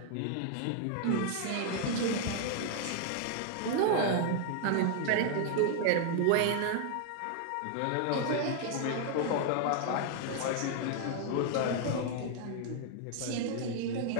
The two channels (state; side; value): different; both; correlation 0.00